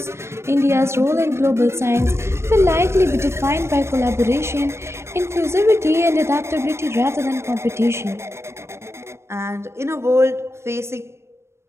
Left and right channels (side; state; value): left; late; 0.13 ms